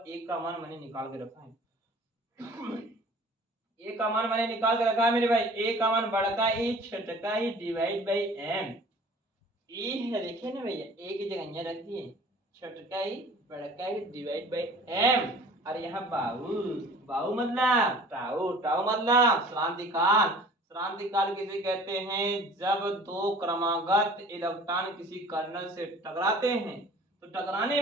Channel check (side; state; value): both; normal; correlation 0.47